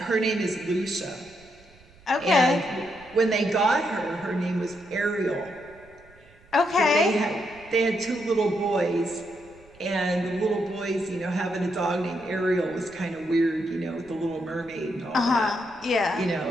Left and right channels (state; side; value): noise; right; rumble, 26 dB below the sound